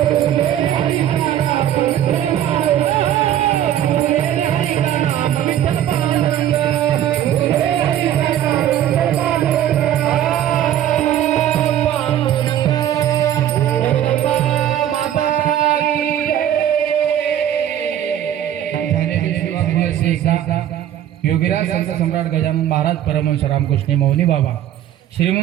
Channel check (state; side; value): quieter; left; 11.2 dB